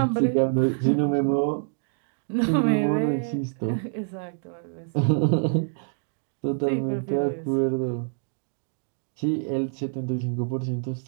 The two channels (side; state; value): left; silent; digital silence